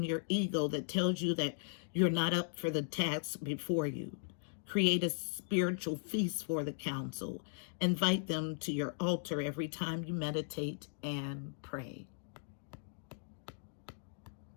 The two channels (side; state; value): right; silent; digital silence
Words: your ego that tells you that you're not up for the task before you. Create a spiritual feast for the council. Invite them to your altar every time you meditate and pray.